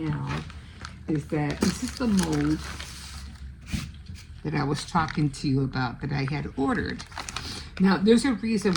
is that this is the mold that I was talking to you about that I had ordered. Now, there's a reason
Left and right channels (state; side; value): identical; both; correlation 1.00